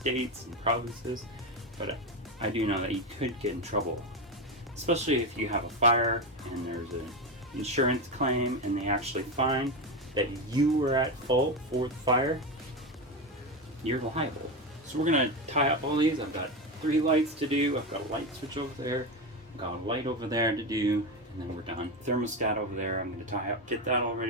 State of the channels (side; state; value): both; normal; correlation 0.16